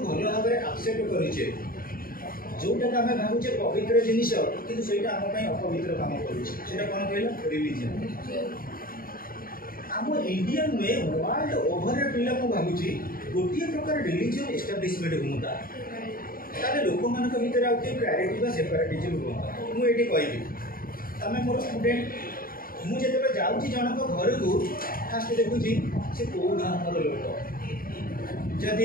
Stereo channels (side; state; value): right; late; 0.42 ms